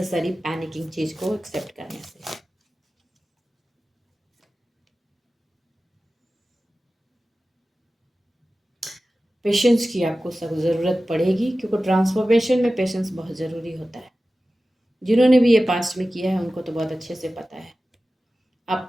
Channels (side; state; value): both; normal; correlation 0.95